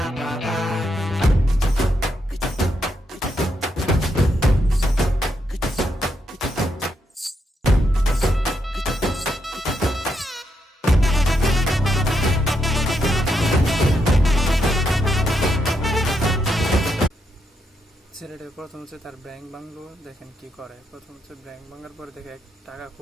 ছেলেটা প্রথম হচ্ছে তার ব্যাংক ভাঙলো, দেখেন কি করে। প্রথম হচ্ছে ব্যাংক ভাঙার পরে দেখে টাকা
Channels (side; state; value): both; normal; correlation 0.80